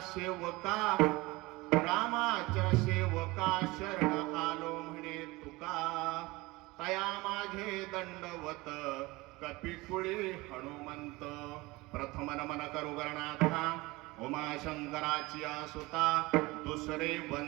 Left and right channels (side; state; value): left; quieter; 21.9 dB